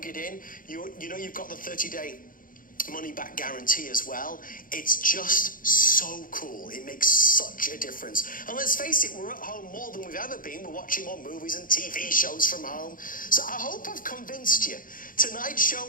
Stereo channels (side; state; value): right; late; 0.40 ms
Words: it in, you know you've got the 30-day money back guarantee as well. It's just so cool. It makes such a difference. And let's face it, we're at home more than we've ever been. We're watching more movies and TV shows from home. So I hope I've convinced you. Tonight's show